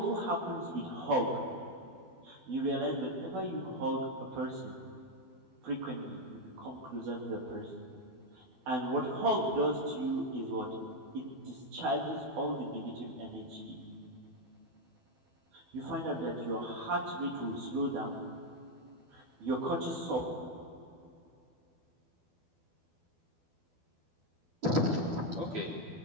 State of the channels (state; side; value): late; left; 12 ms